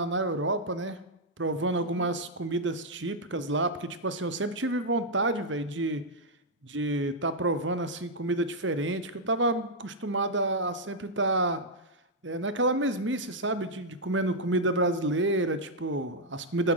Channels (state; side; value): normal; both; correlation -0.04